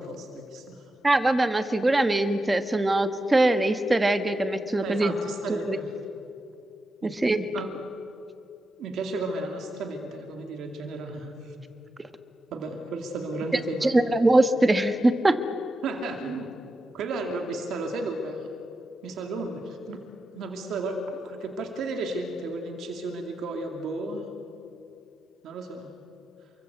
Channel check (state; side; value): normal; both; correlation 0.89